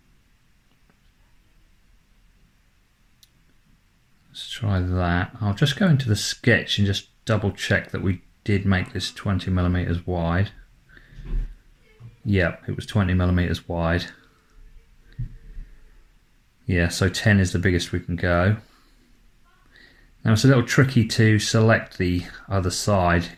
Let's try that. I'll just go into the sketch and just double check that we did make this 20mm wide. Yep, it was 20mm wide. Yeah, so 10 is the biggest we can go. Now it's a little tricky to select the other side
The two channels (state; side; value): identical; both; correlation 1.00